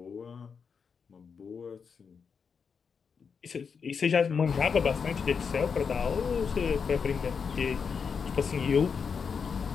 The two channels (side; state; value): right; quieter; 6.0 dB